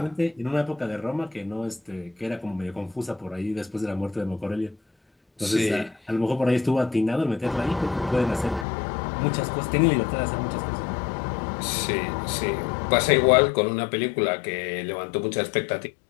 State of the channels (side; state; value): right; drops out; at 8.7 s